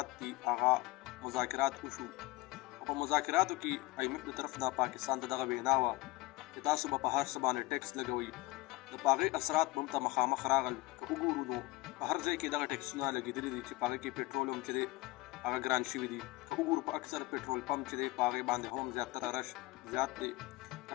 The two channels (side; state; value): right; quieter; 20.9 dB